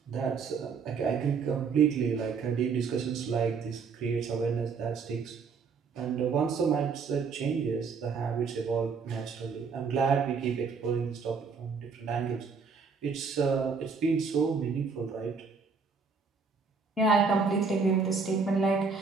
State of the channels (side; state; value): left; quieter; 5.2 dB